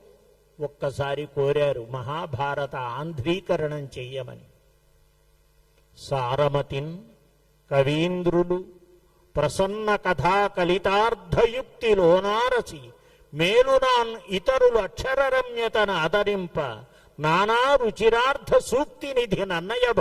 ఒక్కసారి కోరారు మహాభారత ఆంధ్రీకరణం చెయ్యమని. సారమతిన్ కవీంద్రులు ప్రసన్న కథా కలితార్థయుక్తిలోనారసి మేలునాన్ ఇతరులు అక్షరరమ్యతన ఆదరింప నానా రుచిరార్థ సూక్తి నిధి నన్నయ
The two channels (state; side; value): identical; both; correlation 1.00